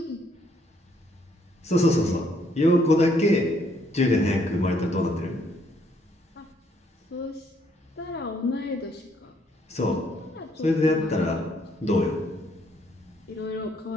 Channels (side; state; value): both; normal; correlation 0.69